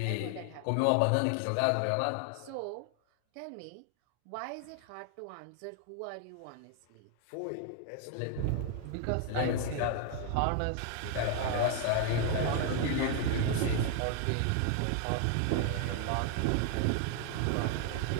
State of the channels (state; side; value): different; both; correlation 0.00